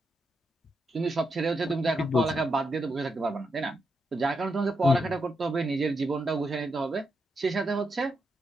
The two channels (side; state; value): both; normal; correlation 0.83